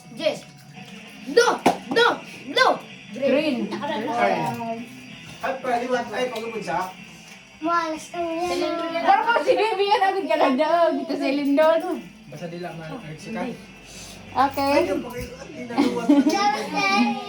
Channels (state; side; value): identical; both; correlation 1.00